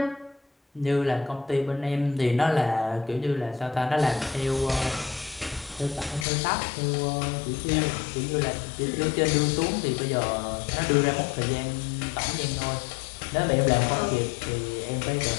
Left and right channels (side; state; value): right; drops out; at 6.2 s